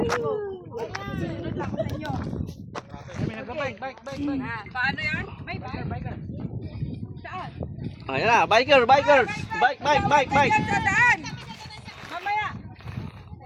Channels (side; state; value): both; identical; correlation 1.00